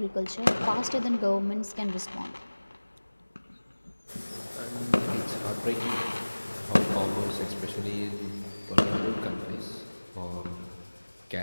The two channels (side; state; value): both; inverted; correlation -1.00